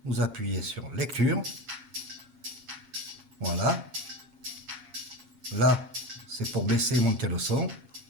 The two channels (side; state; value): left; late; 7.3 ms